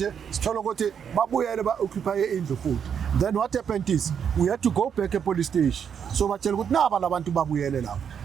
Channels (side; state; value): left; quieter; 7.7 dB